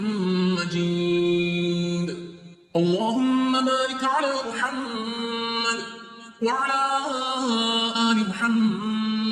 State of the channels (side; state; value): both; identical; correlation 1.00